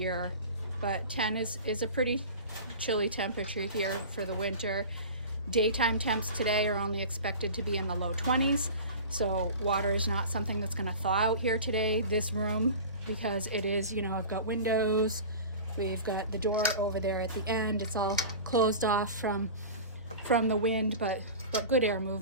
but 10 is a pretty chilly temperature here for the winter. Daytime temps today are only expected to be in the low 20s. So water is not something that's gonna thaw out here today. This room, because it is, I've got windows, we've got the door over there at the end. It's all closed off from the wind, but good air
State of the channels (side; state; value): both; inverted; correlation -0.35